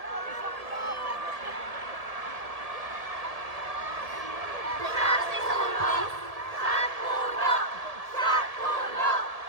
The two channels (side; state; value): left; late; 1.7 ms